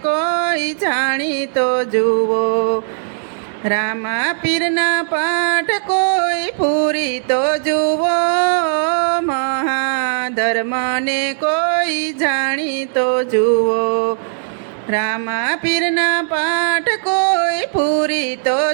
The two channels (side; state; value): left; silent; digital silence